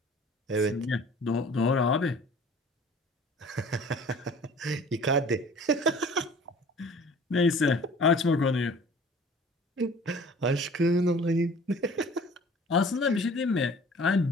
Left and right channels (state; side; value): normal; both; correlation 0.48